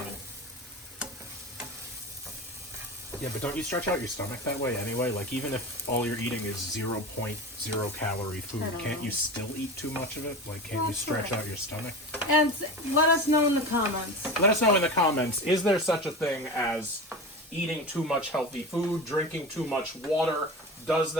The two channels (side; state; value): both; normal; correlation 0.28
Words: Yeah, but don't you stretch out your stomach that way anyway? Like, even if all you're eating is 0.0 calorie food, can't you still eat too much of it? Like, can't you stretch out your stomach? And let us know in the comments. Let us know in the comments, is there such a thing as eating too much healthy food, drinking too much water? Does